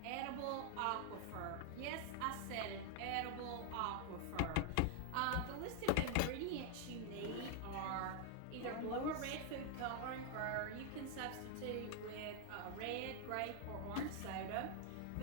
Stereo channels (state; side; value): different; both; correlation 0.00